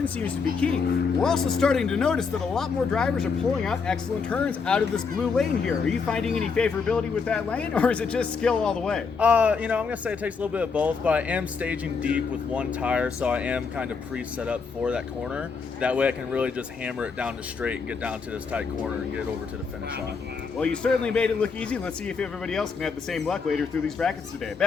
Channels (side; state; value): right; quieter; 5.2 dB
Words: seems to be key. We're also starting to notice that a lot more drivers are pulling out excellent turns out of this blue lane here. Are you finding any favorability with that lane, or is it just skill all the way? I'm going to say it takes a little bit of both, but I am staging deep with one tire, so I am kind of pre-set up for that corner. That way I can really just hammer it down to straight and get down to this tight corner and get it over to the finish line. Well, you certainly made it look easy. Let's see if everybody else can have the same luck later through these brackets today.